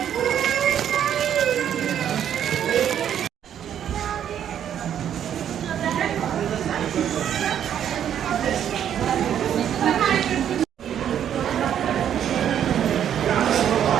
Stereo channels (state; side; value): quieter; left; 9.6 dB